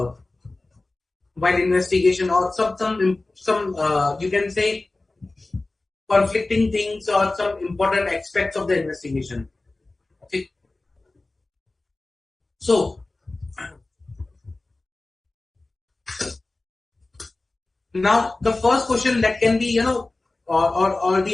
while investigation, or some you can say conflicting things or some important aspects of the investigation. Okay. So, now the first question that can be, or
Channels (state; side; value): quieter; right; 3.1 dB